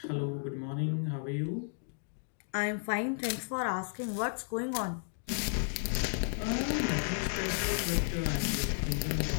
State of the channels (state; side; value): silent; right; digital silence